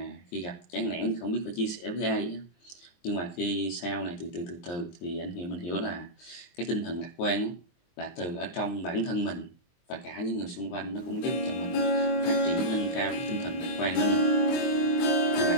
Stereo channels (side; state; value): right; late; 23 ms